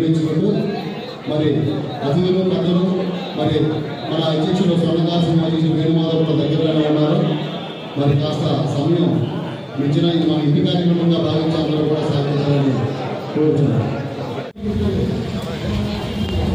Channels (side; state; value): both; identical; correlation 1.00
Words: మరి అతిథులు పెద్దలు మరి మన అధ్యక్షుడు స్వర్ణకార సంఘం అధ్యక్షుడు వేణుమాధవ్ కూడా దగ్గరగానే ఉన్నారు. మరి కాస్త సమయం మించిన ఇది మన ఇంటి కార్యక్రమంగా భావించి అందరూ కూడా సహకరించాలని కోరుతున్నాం.